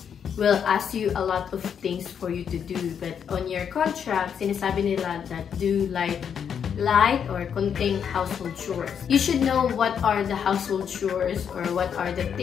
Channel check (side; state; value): right; quieter; 7.7 dB